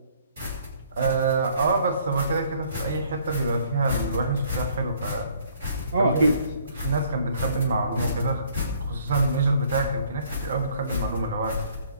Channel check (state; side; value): inverted; both; correlation -0.61